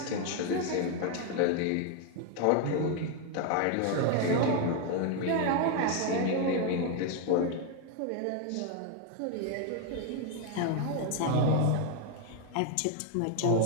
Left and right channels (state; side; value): different; both; correlation 0.01